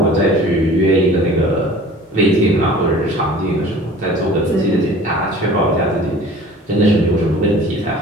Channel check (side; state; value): both; normal; correlation 0.45